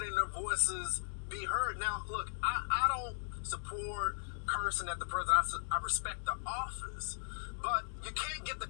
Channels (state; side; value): silent; right; digital silence